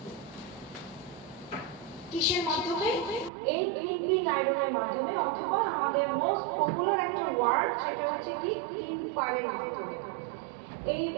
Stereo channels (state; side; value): drops out; left; at 3.3 s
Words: কিসের মাধ্যমে? এই ক্লিপিং আয়রনের মাধ্যমে, অথবা আমাদের মোস্ট পপুলার একটা ওয়ার্ড সেটা হচ্ছে কি? ক্লিপারের মাধ্যমে। এই